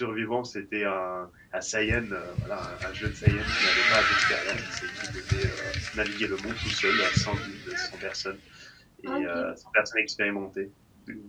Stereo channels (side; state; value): both; identical; correlation 1.00